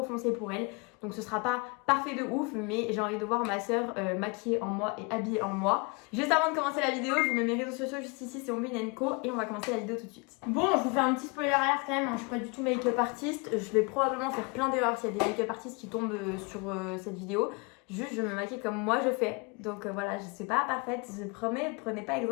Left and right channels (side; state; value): right; quieter; 29.8 dB